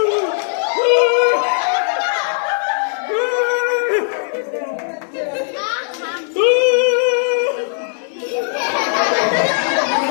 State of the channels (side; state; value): right; silent; digital silence